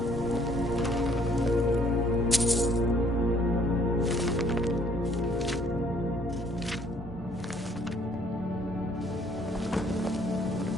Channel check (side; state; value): both; normal; correlation 0.63